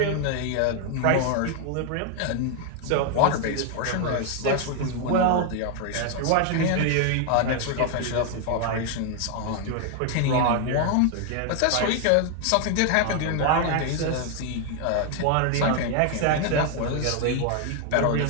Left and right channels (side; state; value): both; different; correlation 0.00